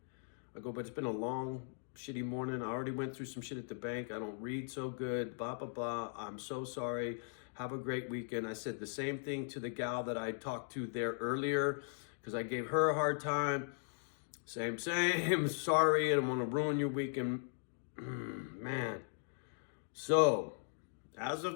I go, but it's been a long, shitty morning. I already went through some shit at the bank. I don't read so good, blah, blah, blah. I'm so sorry. Have a great weekend. I said the same thing to the gal that I talked to there earlier because I gave her a hard time. Same. Sorry, I don't want to ruin your weekend. Man. So, as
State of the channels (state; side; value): silent; right; digital silence